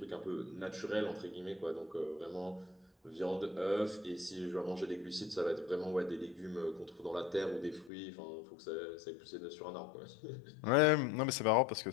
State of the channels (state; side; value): drops out; right; at 7.9 s